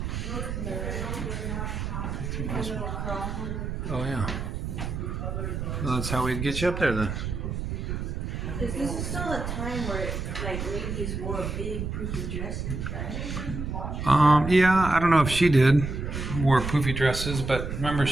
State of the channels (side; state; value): right; noise; rumble, 4 dB below the sound